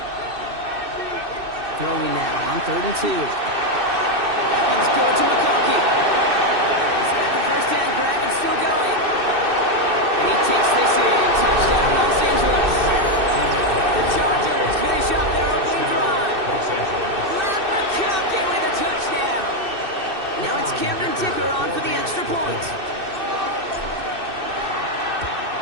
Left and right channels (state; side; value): late; left; 2.6 ms